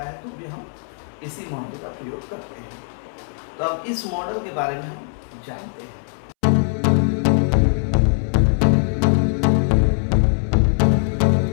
है तो भी हम इसी मॉडल का प्रयोग करते हैं। तो अब इस मॉडल के बारे में हम जानते हैं।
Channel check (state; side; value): silent; right; 65 dB below the other